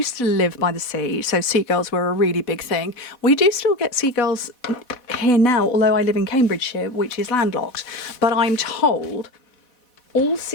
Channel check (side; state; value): right; late; 4.1 ms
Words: to live by the sea, so seagulls were a really big thing. We do still get seagulls here now, although I live in Cambridgeshire, which is landlocked. But I'm told all